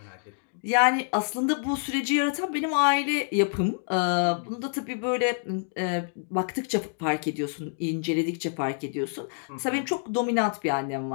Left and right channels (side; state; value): right; silent; digital silence